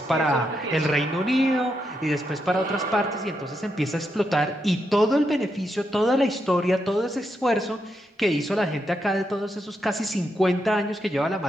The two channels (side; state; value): both; normal; correlation 0.82